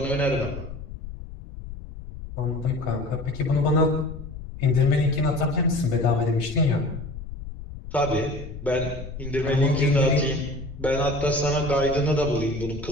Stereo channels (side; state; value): left; noise; rumble, 11 dB below the sound